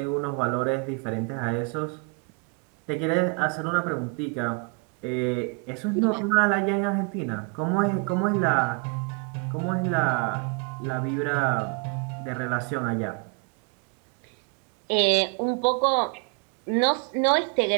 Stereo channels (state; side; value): quieter; left; 32.3 dB